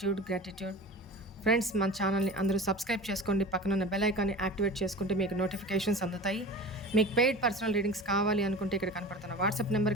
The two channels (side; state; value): both; normal; correlation 0.34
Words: gratitude. Friends, మన ఛానల్ని అందరూ సబ్స్క్రైబ్ చేసుకోండి. పక్కన ఉన్న బెల్ ఐకాన్ని యాక్టివేట్ చేసుకుంటే మీకు నోటిఫికేషన్స్ అందుతాయి. మీకు పెయిడ్ పర్సనల్ రీడింగ్స్ కావాలి అనుకుంటే ఇక్కడ కనపడుతున్న వాట్సాప్